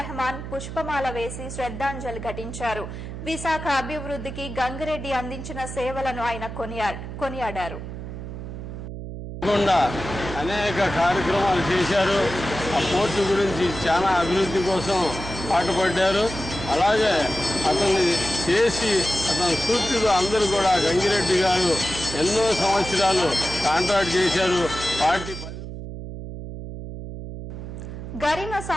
పుష్పమాల వేసి శ్రద్ధాంజలి ఘటించారు. విశాఖ అభివృద్ధికి గంగిరెడ్డి అందించిన సేవలను ఆయన కొనియాడారు. అనేక కార్యక్రమాలు చేశారు. ఆ పోర్టు గురించి చాలా అభివృద్ధి కోసం పాటుపడ్డారు. అలాగే అతన్ని చేసి అతని స్ఫూర్తితో అందరూ కూడా గంగిరెడ్డి గారు ఎన్నో సంవత్సరాలు కాంట్రాక్ట్ చేశారు. పార్టీ గరిమ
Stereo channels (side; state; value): right; noise; hum, 9 dB below the sound